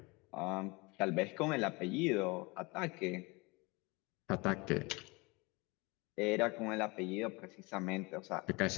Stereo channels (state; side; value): quieter; right; 26.1 dB